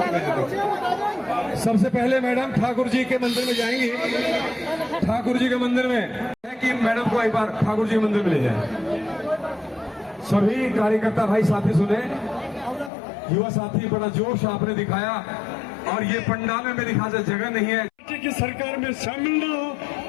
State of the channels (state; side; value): drops out; right; at 12.9 s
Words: सबसे पहले मैडम ठाकुर जी के मंदिर में जाएंगी। ठाकुर जी के मंदिर में है कि मैडम को एक बार ठाकुर जी के मंदिर में ले जाए। सभी कार्यकर्ता भाई साथी सुने, युवा साथी बड़ा जोश आपने दिखाया और ये पंडाल में मेरी ख्याल से जगह नहीं है की सरकार में शामिल न हो,